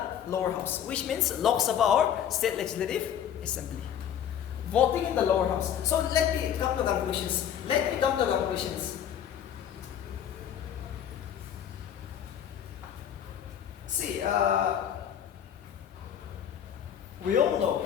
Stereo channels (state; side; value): quieter; right; 9.5 dB